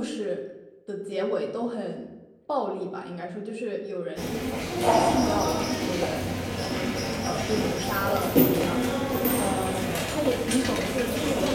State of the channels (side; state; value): both; identical; correlation 1.00